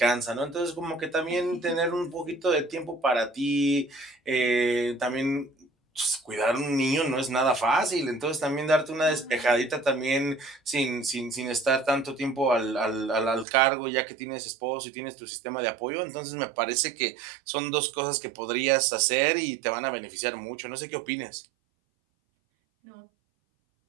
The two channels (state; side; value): drops out; left; at 13.5 s